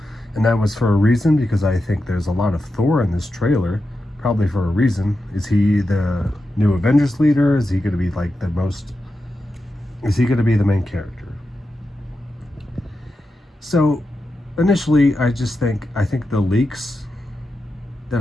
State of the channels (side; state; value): both; normal; correlation 0.89